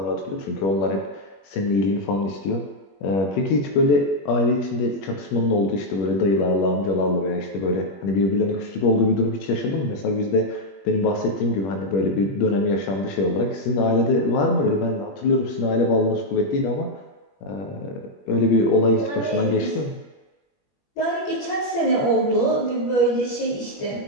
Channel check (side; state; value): right; late; 21 ms